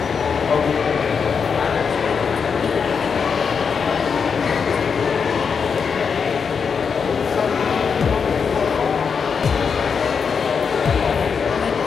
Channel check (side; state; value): right; quieter; 6.1 dB